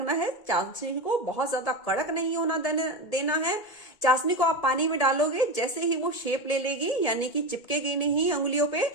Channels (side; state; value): right; late; 1.7 ms